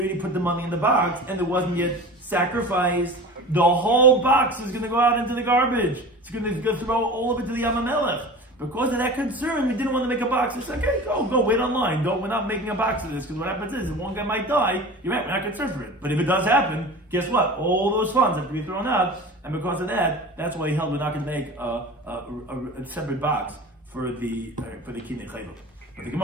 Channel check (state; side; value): normal; both; correlation 0.35